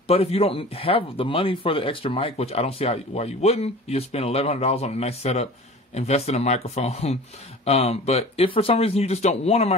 But if you don't have the money for the extra mic, which I don't see why you wouldn't, you just spend $1,100 on a nice setup, invest in a microphone. But if for some reason you just don't want a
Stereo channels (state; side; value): normal; both; correlation 0.40